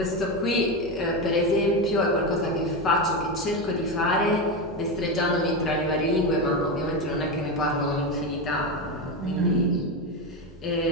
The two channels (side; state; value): both; normal; correlation 0.15